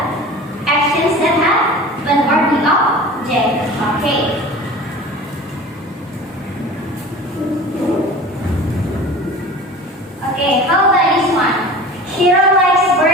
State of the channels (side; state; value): both; normal; correlation 0.39